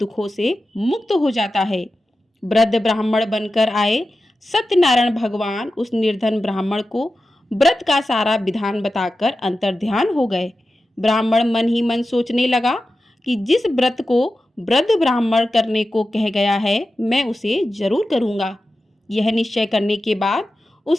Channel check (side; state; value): both; normal; correlation 0.93